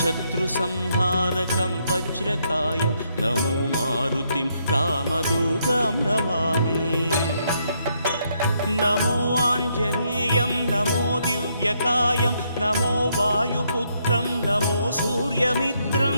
वज्रकायं नमो मारुतिं रामदूतं नमामि नमो आञ्जनेयं नमो दिव्यकायं नमो वायुपुत्रं नमो सूर्यमित्रं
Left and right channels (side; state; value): both; inverted; correlation -0.75